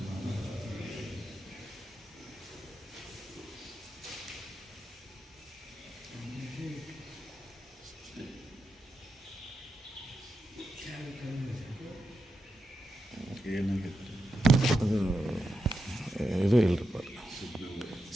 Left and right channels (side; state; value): both; normal; correlation 0.86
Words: ಏನಾಗಿತ್ತು? ಅದು ಇದು ಇಲ್ಲರಿಪ್ಪ,